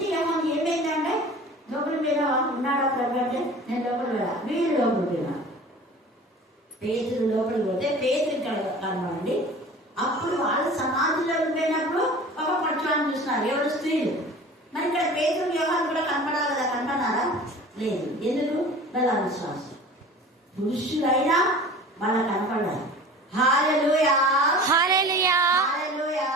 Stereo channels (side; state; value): both; normal; correlation 0.41